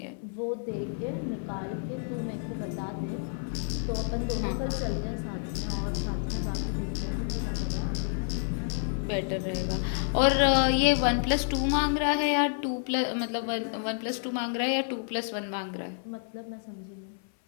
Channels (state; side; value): silent; right; 55 dB below the other